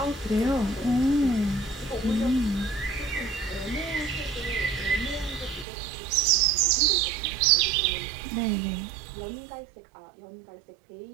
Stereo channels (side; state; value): left; drops out; at 5.7 s